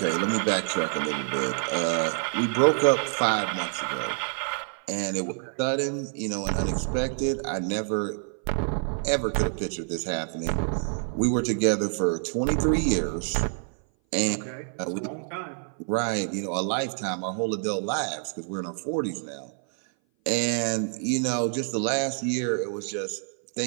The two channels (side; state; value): left; silent; 57 dB below the other